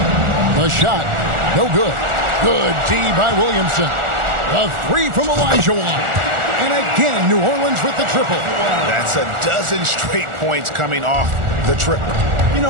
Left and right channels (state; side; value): late; left; 1.4 ms